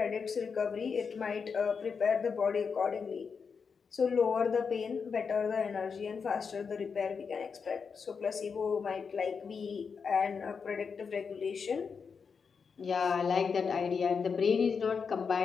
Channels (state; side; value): quieter; right; 5.8 dB